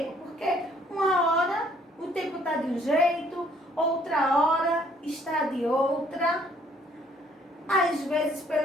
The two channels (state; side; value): normal; both; correlation 0.63